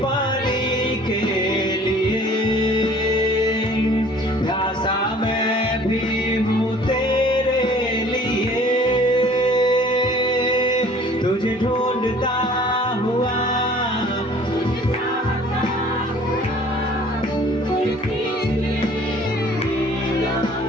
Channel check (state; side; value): normal; both; correlation 0.52